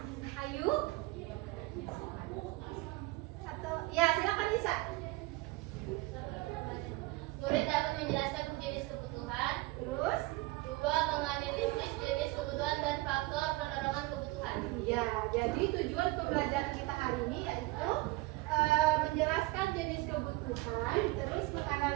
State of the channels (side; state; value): left; quieter; 20.7 dB